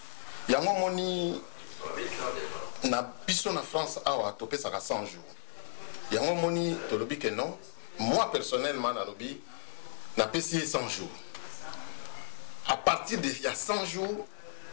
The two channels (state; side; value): silent; right; digital silence